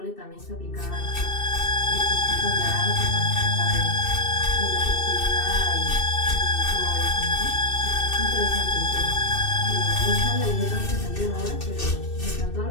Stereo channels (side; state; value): right; late; 2.6 ms